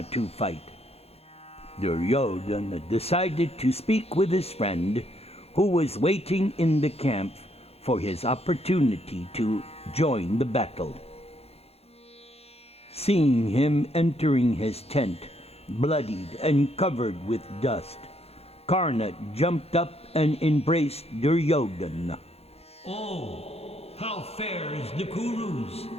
to fight. Duryodhana decided to speak with his friend, who was waiting in the camp for his opportunity to join the battle. Seeing him entering his tent, bloodied and covered with dust, Karna jumped up and embraced Duryodhana. Oh, how fares the Kurus?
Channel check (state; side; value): late; right; 0.29 ms